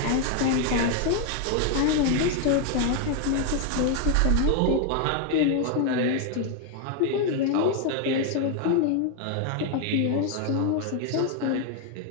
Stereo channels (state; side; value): different; both; correlation 0.01